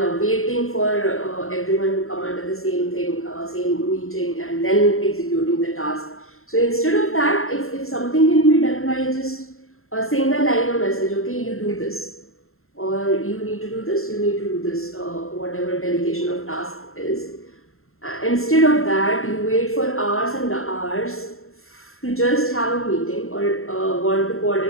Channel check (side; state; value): right; late; 0.62 ms